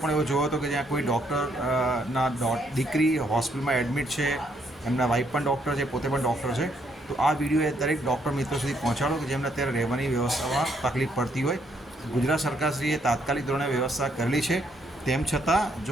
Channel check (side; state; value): both; normal; correlation 0.72